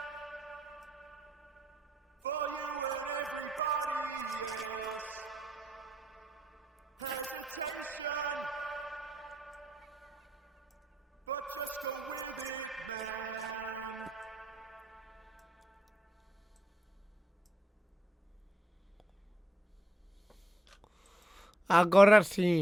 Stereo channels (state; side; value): normal; both; correlation 0.81